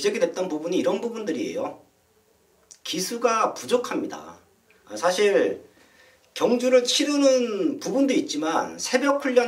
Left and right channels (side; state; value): both; identical; correlation 1.00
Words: 됐던 부분이 이런 부분들이에요. 기수가 부족합니다. 사실 경주를 치르는 부분도 있지만 새벽